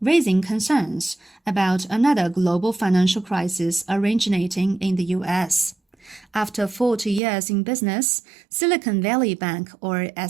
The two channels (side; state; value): left; drops out; at 7.2 s